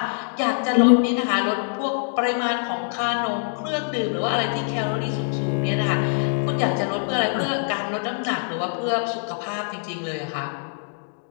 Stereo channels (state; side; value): silent; right; 63 dB below the other